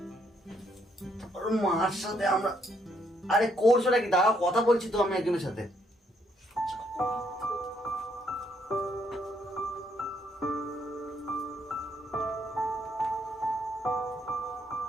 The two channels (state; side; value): normal; both; correlation 0.72